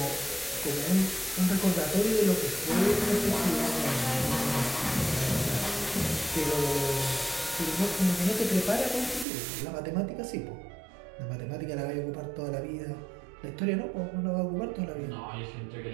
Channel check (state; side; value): drops out; left; at 9.2 s